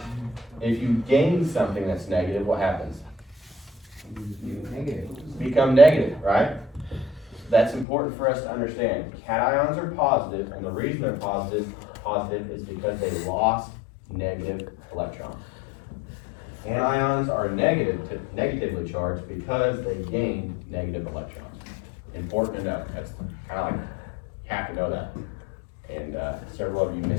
If you gain something that's negative, what happens? negative. Become negative, right? That's important for us to understand. Cations are positive, and the reason they're positive is because they lost negative electrons. Anions are negatively charged because they gained negative electrons. Important to know. That's kind of like, you have to know that. And several of you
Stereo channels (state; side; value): drops out; right; at 7.9 s